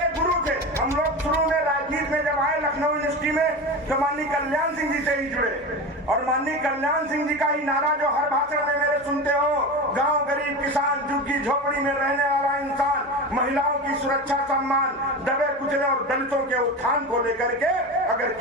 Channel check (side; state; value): both; normal; correlation 0.25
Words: गुरु थे। हम लोग शुरू में राजनीति में जब आए लखनऊ यूनिवर्सिटी में तो माननीय कल्याण सिंह जी से ही जुड़े, और माननीय कल्याण सिंह जी का ही नारा जो हर भाषण में मेरे सुनते हो, गांव गरीब किसान झुग्गी झोपड़ी में रहने वाला इंसान, महिलाओं की सुरक्षा सम्मान, दबे कुचले और दलितों के उत्थान को लेकर के अगर